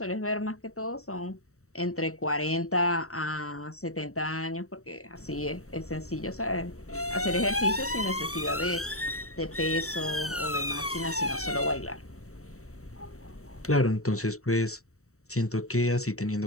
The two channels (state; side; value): late; right; 0.64 ms